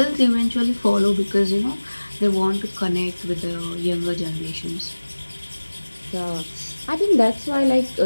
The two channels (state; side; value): inverted; both; correlation -1.00